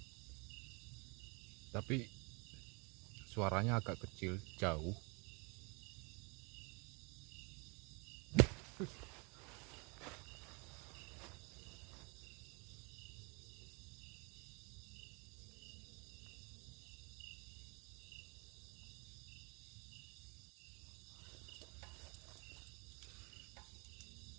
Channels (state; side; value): quieter; left; 31.5 dB